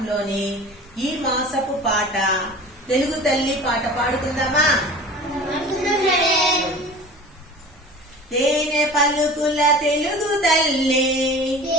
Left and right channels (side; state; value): both; normal; correlation 0.39